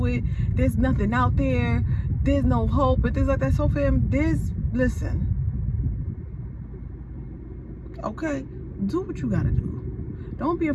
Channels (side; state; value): both; identical; correlation 1.00